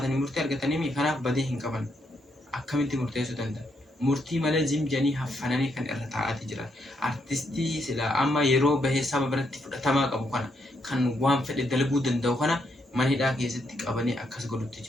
murtee argatanii kanaaf badii hin qaban akkamitti murteessuu danda'a? Murtii malee zimjanii haffananii kan irra taa'aati jiran. Artistii sila amma yeroo bahee saba biratti fudhatamaa qabu kana kan waan fedhe dalaguu danda'u kana manhidhaa keessatti qabanii akkas godhutti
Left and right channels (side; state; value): both; normal; correlation 0.77